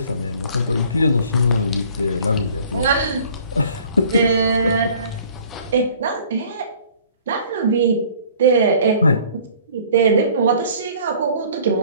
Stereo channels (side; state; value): both; inverted; correlation -0.53